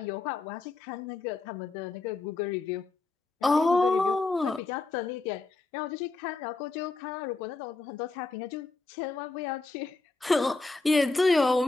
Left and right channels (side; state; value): right; quieter; 3.6 dB